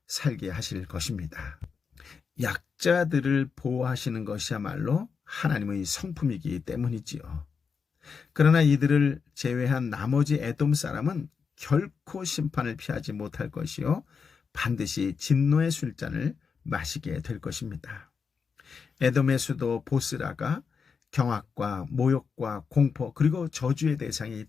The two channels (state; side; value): quieter; right; 5.8 dB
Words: 살게 하실 것입니다. 약자들을 보호하시는 것이야말로 하나님의 성품이기 때문이지요. 그러나 이들을 제외한 나머지 에돔 사람은 결코 심판을 피하지 못할 것이요 반드시 진노의 술잔을 마시게 될 것입니다. 에돔의 수도 보스라가 경악과 모욕과 공포 그리고 저주의 대상이